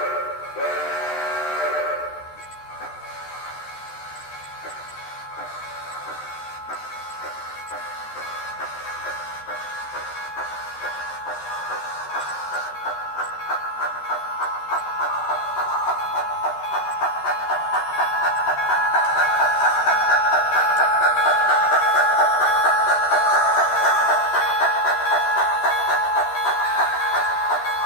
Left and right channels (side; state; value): right; late; 13 ms